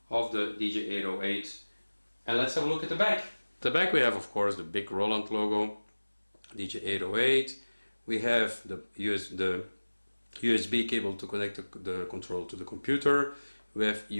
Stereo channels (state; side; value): inverted; both; correlation -1.00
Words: of the DJ-808, and let's have a look at the back. The back we have, of course, the big Roland logo, DJ-808. We have the USB cable to connect the control to the computer. We have